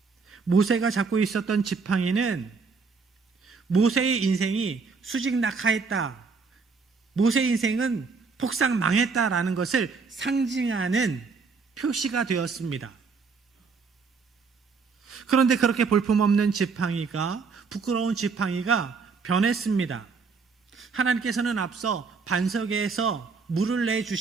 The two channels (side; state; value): left; quieter; 4.9 dB